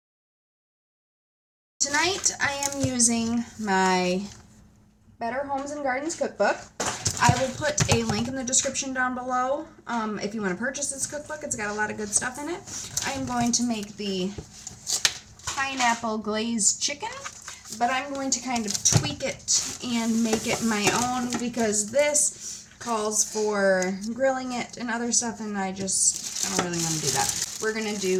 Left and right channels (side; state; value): both; identical; correlation 1.00